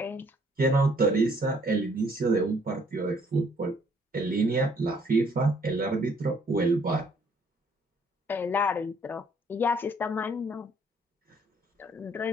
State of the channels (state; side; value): normal; both; correlation 0.64